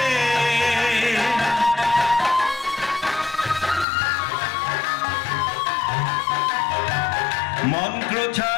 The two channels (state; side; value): drops out; right; at 3.9 s